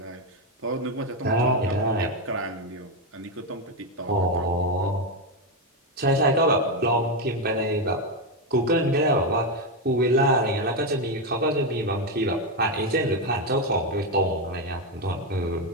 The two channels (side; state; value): both; normal; correlation 0.07